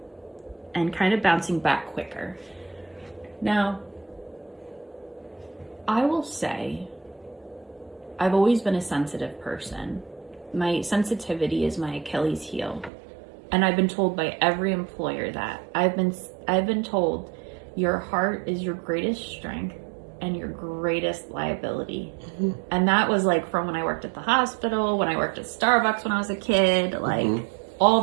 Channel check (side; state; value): left; drops out; at 12.9 s